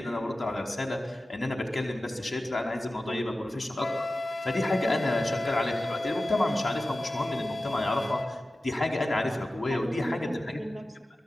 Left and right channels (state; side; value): normal; both; correlation 0.95